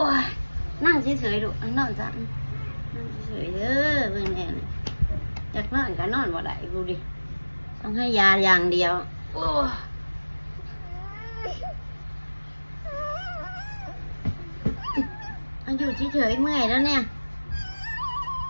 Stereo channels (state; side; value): inverted; both; correlation -1.00